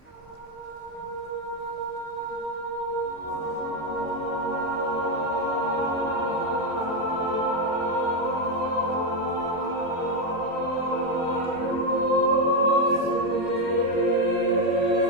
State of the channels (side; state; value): both; normal; correlation 0.06